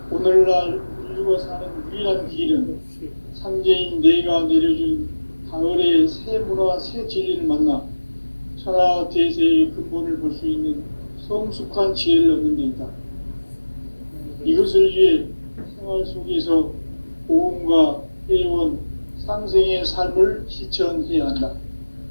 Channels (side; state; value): both; inverted; correlation -1.00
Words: 오늘날 인류가 사는 유일한 길은 상제인 내가 내려준 가을의 새 문화, 새 진리를 만나 천하 대세의 근본을 볼 수 있는 성숙한 지혜를 얻는 데 있다. 이것을 위해 생활 속에서 보험과 회원, 상생의 삶을 실천해야 한다.